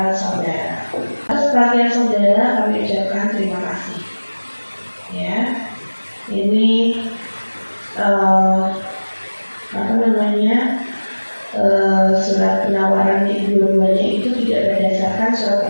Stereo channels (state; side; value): inverted; both; correlation -1.00